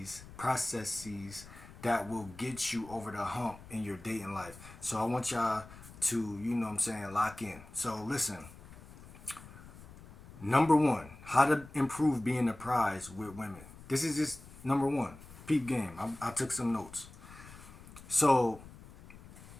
that will get you over the hump in your dating life. So I want y'all to, lock in. So listen, number one, how to improve being a prize with women. This is just number one. Peep game. I took some notes. So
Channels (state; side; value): noise; left; rumble, 18 dB below the sound